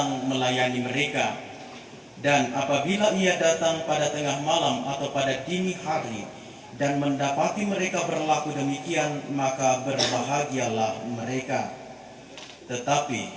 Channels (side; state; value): both; identical; correlation 1.00